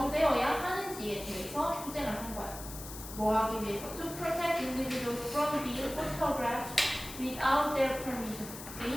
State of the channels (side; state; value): left; noise; hiss, 12 dB below the sound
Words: 하는지에 대해서 투쟁을 한 거야. 뭐 하기 위해서? To protect individuals from being photographed without their permission.